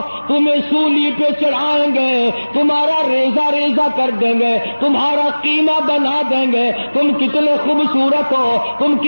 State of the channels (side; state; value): both; inverted; correlation -1.00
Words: تمہیں سولی پہ چڑھائیں گے، تمہارا ریزہ ریزہ کر دیں گے، تمہارا قیمہ بنا دیں گے، تم کتنے خوبصورت ہو، تم